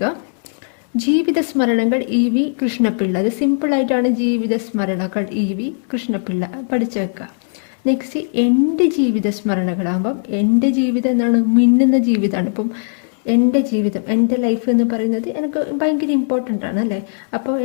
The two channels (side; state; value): right; silent; 67 dB below the other